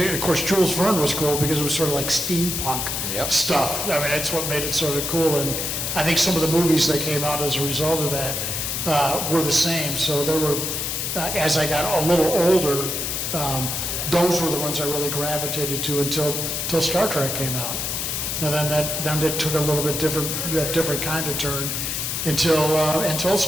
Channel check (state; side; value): noise; left; hiss, 2 dB below the sound